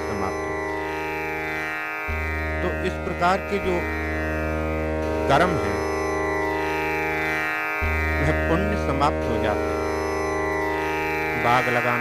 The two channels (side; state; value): both; identical; correlation 1.00